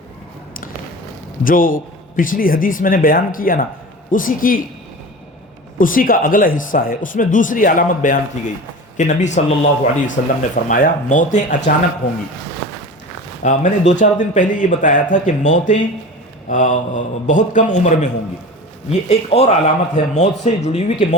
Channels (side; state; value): both; normal; correlation 0.33